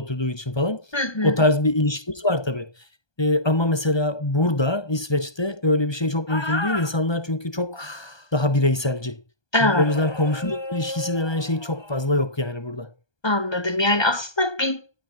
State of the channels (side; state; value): right; late; 1.2 ms